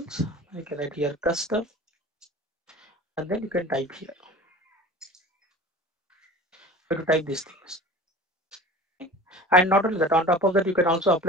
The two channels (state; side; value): normal; both; correlation 0.40